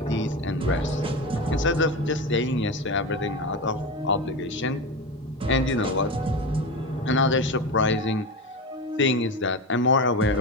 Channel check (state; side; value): normal; both; correlation 0.22